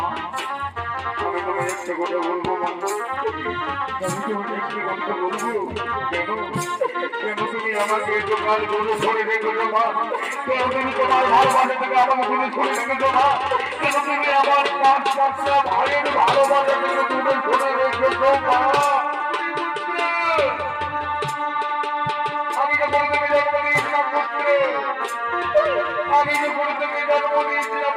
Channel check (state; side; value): identical; both; correlation 1.00